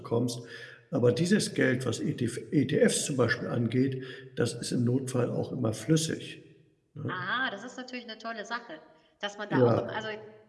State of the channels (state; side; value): identical; both; correlation 1.00